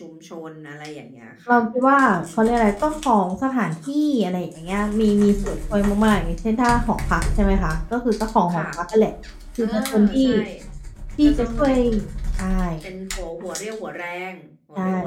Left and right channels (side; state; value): both; identical; correlation 1.00